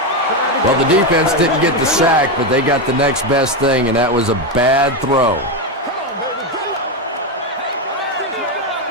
Well, the defense didn't get the sack, but they got the next best thing, and that was a bad throw.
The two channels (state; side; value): normal; both; correlation 0.10